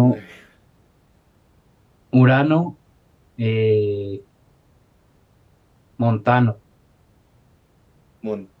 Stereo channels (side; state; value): both; identical; correlation 1.00